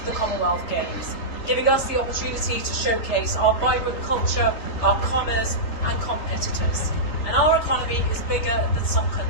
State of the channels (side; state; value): right; late; 3.3 ms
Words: the Commonwealth Games, giving us the opportunity to showcase our vibrant culture, our commerce and competitors. And our economy is bigger than some